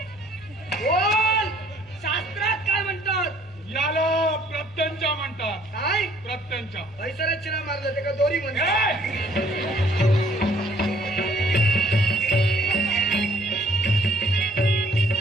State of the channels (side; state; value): both; normal; correlation 0.61